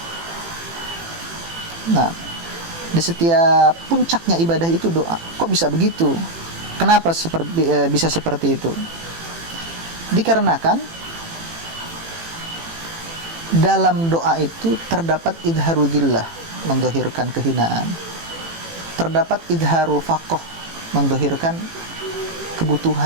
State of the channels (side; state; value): left; late; 18 ms